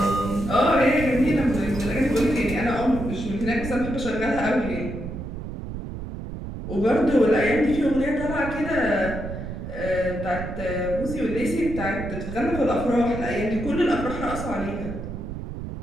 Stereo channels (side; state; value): right; noise; rumble, 8 dB below the sound